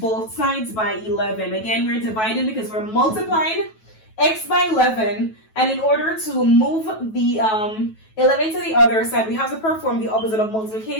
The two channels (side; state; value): right; late; 9.2 ms